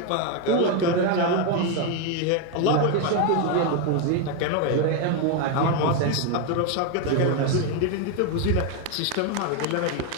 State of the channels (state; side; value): different; both; correlation 0.02